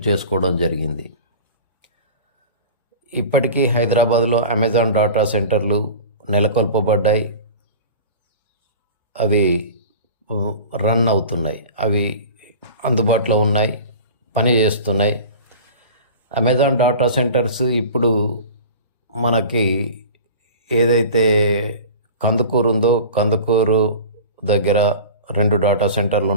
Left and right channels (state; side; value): inverted; both; correlation -0.37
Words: చేసుకోవడం జరిగింది. ఇప్పటికీ హైదరాబాద్లో అమెజాన్ డాటా సెంటర్లు నెలకొల్పబడ్డాయి. అవి రన్ అవుతున్నాయి, అవి అందుబాటులో ఉన్నాయి, పని చేస్తున్నాయి. అమెజాన్ డాటా సెంటర్స్ ఇప్పుడు మనకి ఏదైతే కందుకూరు ఉందో, కందుకూరు దగ్గర 2 డాటా సెంటర్లు